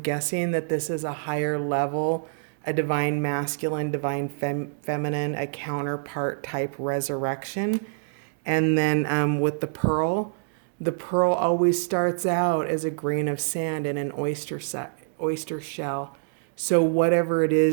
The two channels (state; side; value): silent; left; 61 dB below the other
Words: that this is a higher level, a divine masculine, divine feminine, a counterpart type resurrection. And then with the pearl always starts out as a grain of sand in an oyster shell. So whatever it